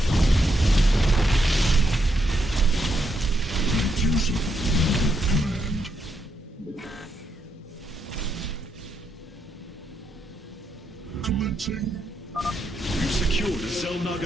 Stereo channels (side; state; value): both; normal; correlation 0.79